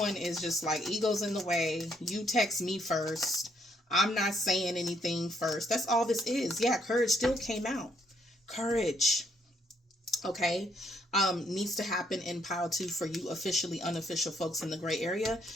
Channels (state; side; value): normal; both; correlation 0.71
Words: is just like, ego's in the way. You text me first. I'm not saying anything first. That's all this is. Yeah, courage still came out. Courage, okay, needs to happen in pile 2 for you officially unofficial folks in the gray area,